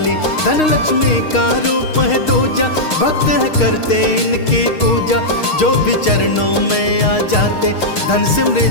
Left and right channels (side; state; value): right; late; 6.5 ms